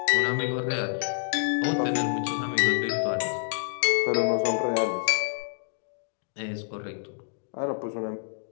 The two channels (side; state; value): right; silent; digital silence